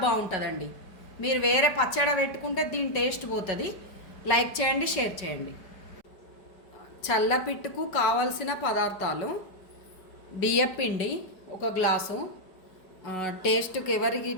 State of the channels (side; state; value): right; late; 5.3 ms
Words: బాగుంటుందండి. మీరు వేరే పచ్చడి పెట్టుకుంటే దీని టేస్ట్ పోతుంది. లైక్ చేయండి, షేర్ చేయండి. చల్లపిట్టుకు కావలసిన పదార్థాలు: బియ్యపిండి 1 గ్లాసు, టేస్ట్కి ఎవరికి